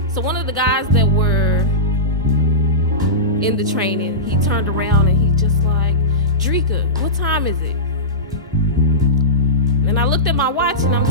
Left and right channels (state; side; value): normal; both; correlation -0.16